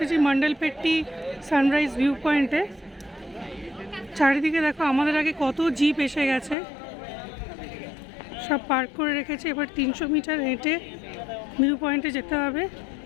মন্ডলপেট্টি সানরাইজ ভিউ পয়েন্টে। চারিদিকে দেখো আমাদের আগে কত জিপ এসে গেছে, সব পার্ক করে রেখেছে। এবার 300 মিটার হেঁটে ভিউ পয়েন্টে যেতে হবে।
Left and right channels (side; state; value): right; drops out; at 6.6 s